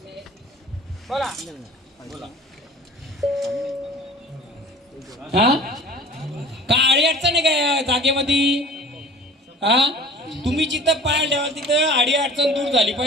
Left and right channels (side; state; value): both; normal; correlation 0.44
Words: बोला हा काळी अडचण आहे काय जागेमध्ये? हा तुम्ही जिथं पाय ठेवाल तिथं आडी अडचण दूर झाली